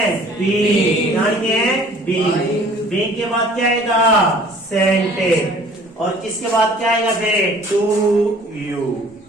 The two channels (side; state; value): both; normal; correlation 0.52